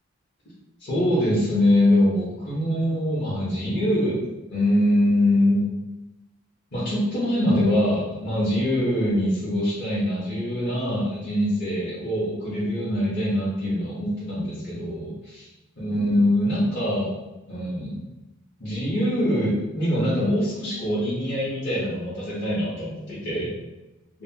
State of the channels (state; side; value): normal; both; correlation 0.76